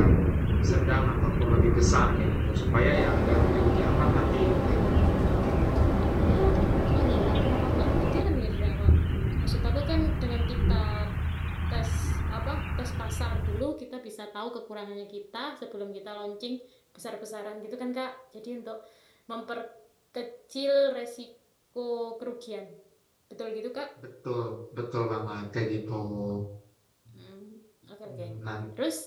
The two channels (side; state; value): both; identical; correlation 1.00